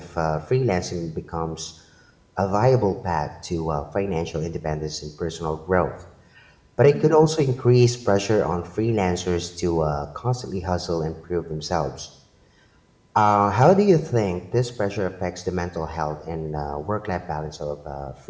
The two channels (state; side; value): identical; both; correlation 1.00